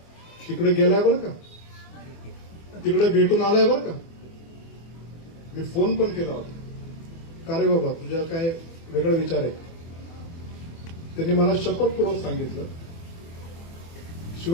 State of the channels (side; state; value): right; late; 24 ms